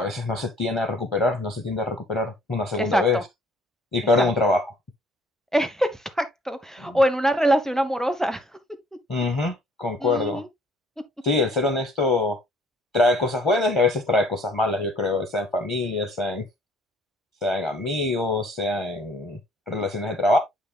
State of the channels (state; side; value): normal; both; correlation 0.59